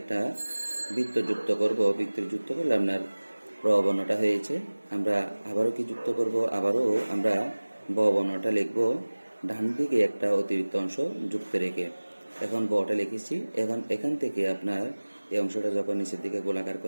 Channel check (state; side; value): inverted; both; correlation -1.00